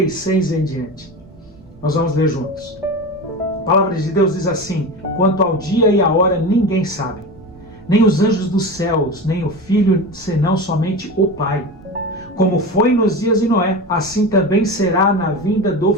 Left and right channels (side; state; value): right; noise; rumble, 26 dB below the sound